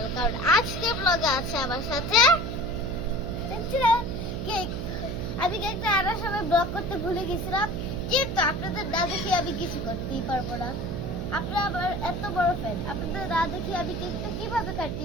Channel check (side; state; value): right; noise; hum, 4 dB below the sound